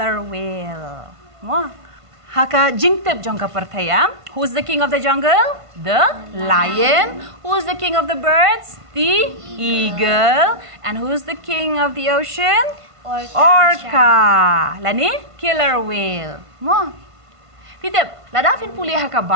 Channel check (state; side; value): late; left; 1.5 ms